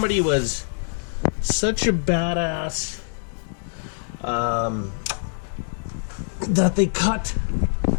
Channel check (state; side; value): silent; right; digital silence